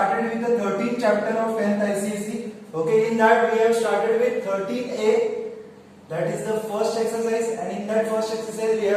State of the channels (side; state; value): both; identical; correlation 1.00